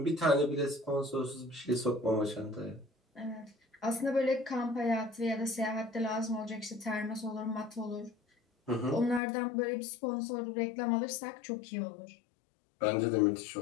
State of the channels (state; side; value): drops out; right; at 9.2 s